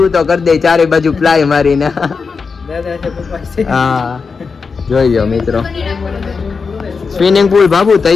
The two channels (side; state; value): right; quieter; 5.1 dB